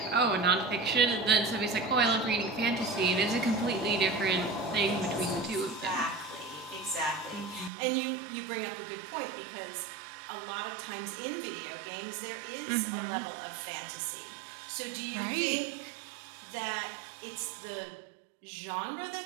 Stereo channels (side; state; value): left; drops out; at 7.7 s